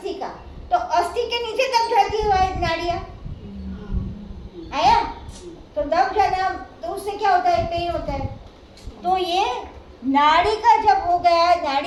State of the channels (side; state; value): both; identical; correlation 1.00